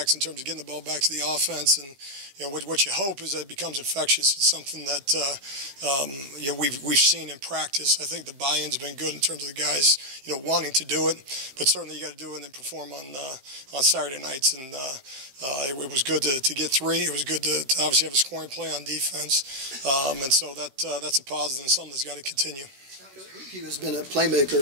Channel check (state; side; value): late; left; 15 ms